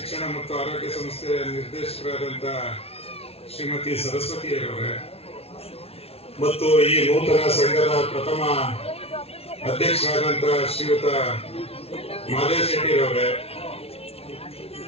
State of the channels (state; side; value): late; right; 0.29 ms